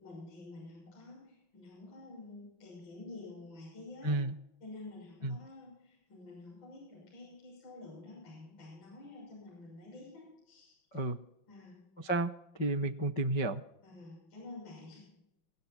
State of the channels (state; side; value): late; right; 5.3 ms